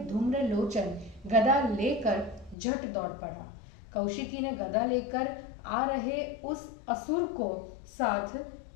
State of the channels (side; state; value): right; drops out; at 2.6 s